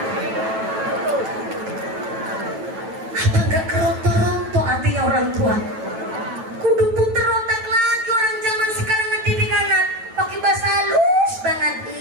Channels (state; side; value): late; left; 9.1 ms